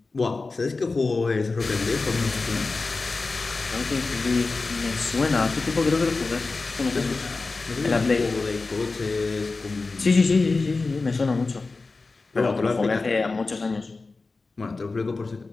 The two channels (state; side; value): quieter; right; 3.8 dB